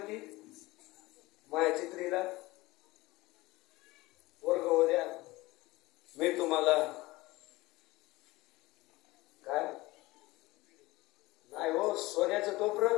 माझ्या चित्रीला पोरग होऊ द्या, मी तुम्हाला काय नाही हो सोन्याचं टोपरं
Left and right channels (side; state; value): right; quieter; 20.2 dB